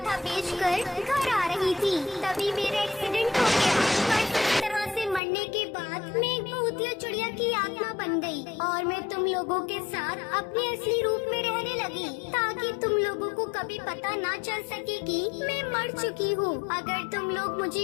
बेचकर घर आ रही थी, तभी मेरा एक्सीडेंट हो गया। पर इस तरह से मरने के बाद मैं एक भूतिया चिड़िया की आत्मा बन गई और मैं तुम लोगों के साथ अपने असली रूप में रहने लगी, ताकि तुम लोगों को कभी पता ना चल सके कि मैं मर चुकी हूँ। अगर तुम लोग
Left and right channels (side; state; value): right; drops out; at 5.2 s